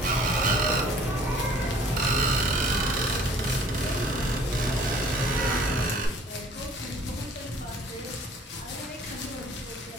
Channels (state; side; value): normal; both; correlation 0.53